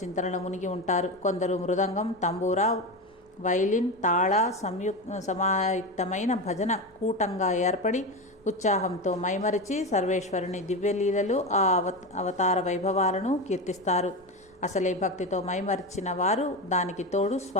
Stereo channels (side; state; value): both; normal; correlation 0.19